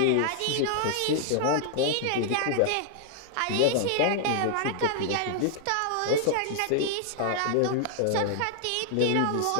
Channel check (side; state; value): both; different; correlation -0.01